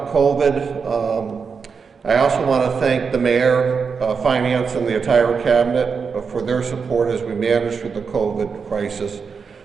COVID. I also want to thank the Mayor, Finance, and the entire Cabinet for their support as we manage through the COVID crisis.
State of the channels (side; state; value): left; quieter; 5.7 dB